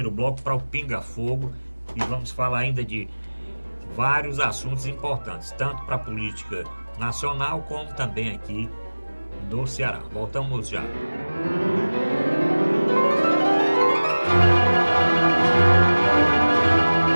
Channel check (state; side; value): inverted; both; correlation -1.00